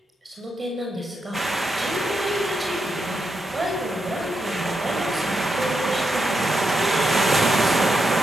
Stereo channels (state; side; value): normal; both; correlation 0.84